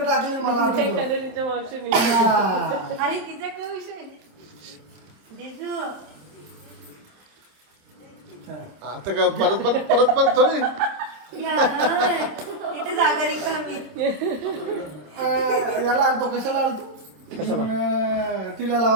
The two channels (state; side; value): late; left; 26 ms